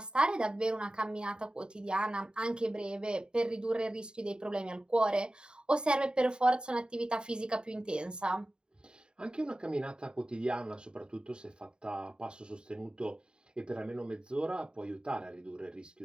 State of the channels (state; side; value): late; left; 0.049 ms